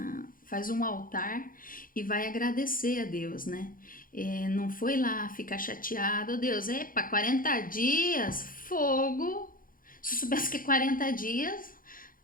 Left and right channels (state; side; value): late; right; 0.40 ms